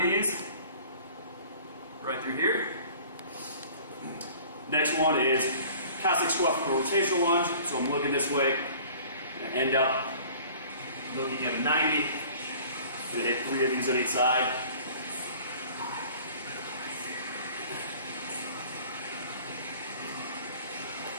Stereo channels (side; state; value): both; inverted; correlation -0.48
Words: these. Right through here. Next one is Cossack squat from a rotational lunge. So I'm looking this way. I'm going to end up looking at a 90. I'm going to hit 3 of these on each side.